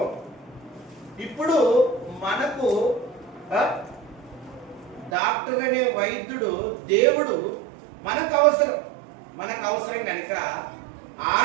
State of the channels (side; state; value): left; drops out; at 5.1 s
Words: ఇప్పుడు మనకు డాక్టర్ అనే వైద్యుడు దేవుడు మనకు అవసరం కనుక